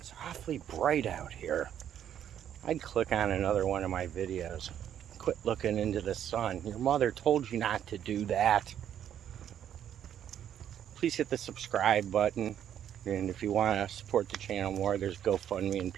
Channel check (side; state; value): left; quieter; 10.0 dB